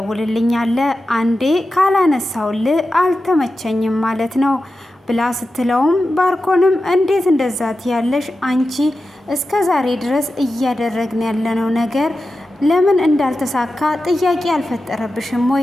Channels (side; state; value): both; normal; correlation 0.92